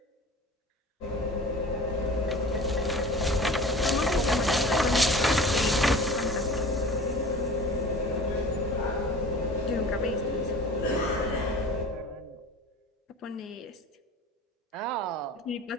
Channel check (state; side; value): normal; both; correlation 0.39